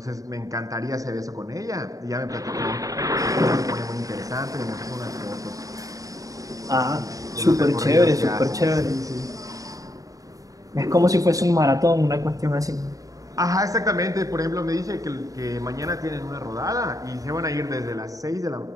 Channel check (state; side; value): late; left; 0.17 ms